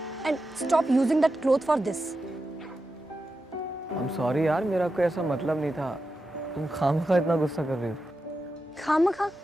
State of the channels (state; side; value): normal; both; correlation 0.90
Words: and stop using that cloth for this. I'm sorry यार, मेरा कोई ऐसा मतलब नहीं था। तुम खामखा इतना गुस्सा कर रही हो। खामखा?